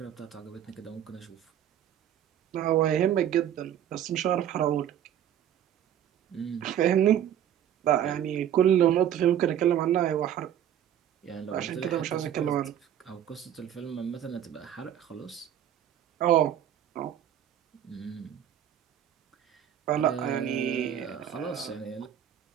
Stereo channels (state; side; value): quieter; left; 10.3 dB